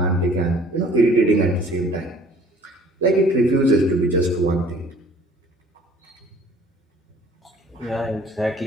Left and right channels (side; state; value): both; normal; correlation 0.54